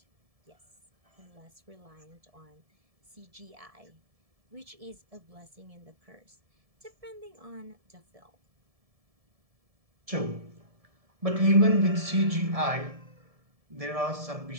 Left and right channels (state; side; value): late; left; 1.7 ms